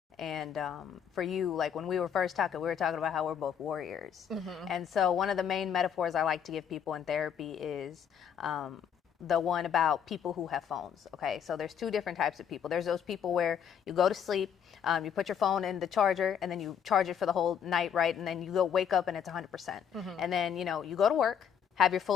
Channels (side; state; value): right; quieter; 8.2 dB